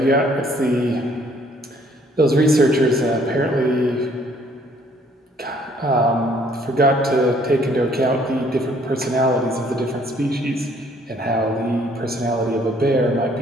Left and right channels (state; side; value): normal; both; correlation 0.62